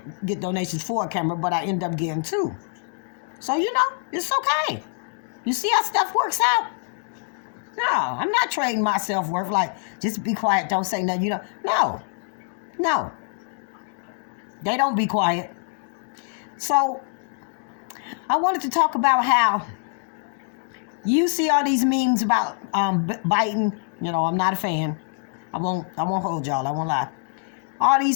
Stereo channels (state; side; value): silent; right; 59 dB below the other